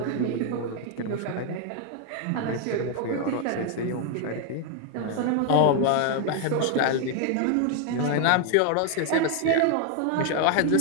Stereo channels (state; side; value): different; both; correlation 0.00